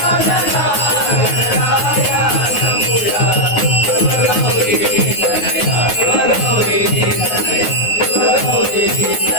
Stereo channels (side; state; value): right; late; 9.5 ms